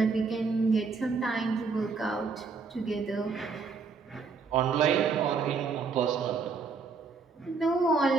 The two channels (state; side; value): quieter; left; 4.8 dB